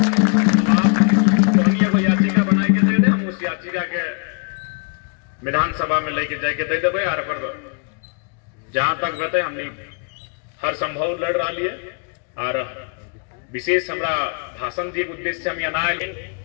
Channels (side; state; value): right; quieter; 37.1 dB